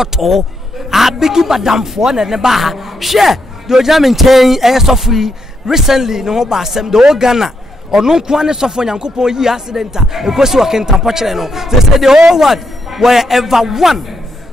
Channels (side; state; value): both; normal; correlation 0.80